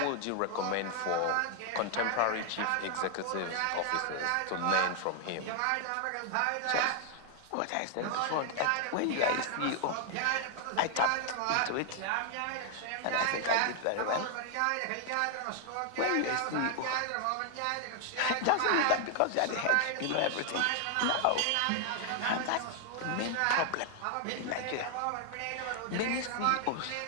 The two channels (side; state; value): both; different; correlation 0.00